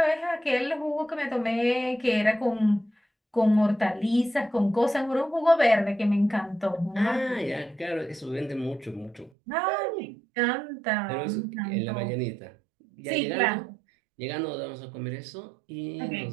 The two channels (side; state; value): left; drops out; at 9.3 s